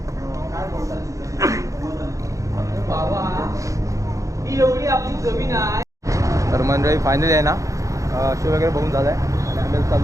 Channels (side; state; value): left; late; 0.16 ms